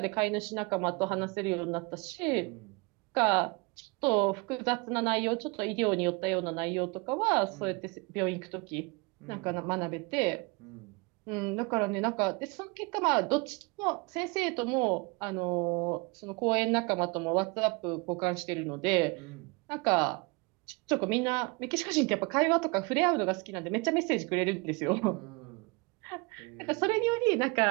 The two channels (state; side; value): quieter; left; 28.4 dB